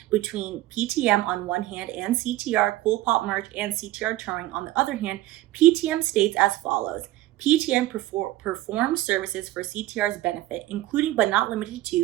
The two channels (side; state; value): left; quieter; 15.9 dB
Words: between PTM on one hand and CTR, Cool Pop Merch, and CTR Touring on the other hand, PTM states as follows. PTM performs services for CTR's benefit, including but not limited